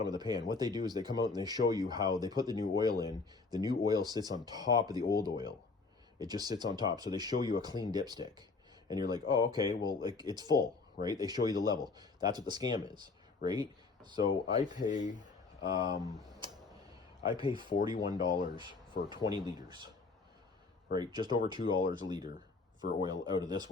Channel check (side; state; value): right; quieter; 4.1 dB